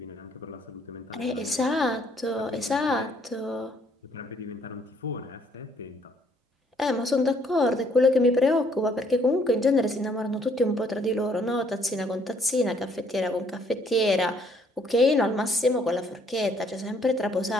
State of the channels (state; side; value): normal; both; correlation 0.65